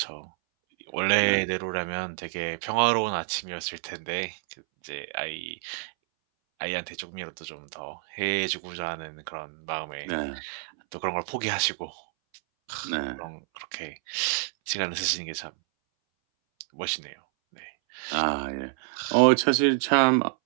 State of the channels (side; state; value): left; silent; 59 dB below the other